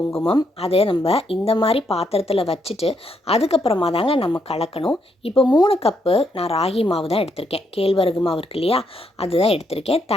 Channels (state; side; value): normal; both; correlation 0.76